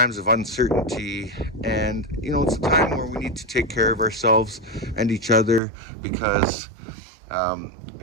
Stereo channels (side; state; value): left; drops out; at 5.6 s